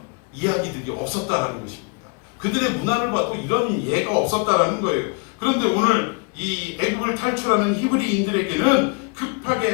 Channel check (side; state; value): right; quieter; 35.4 dB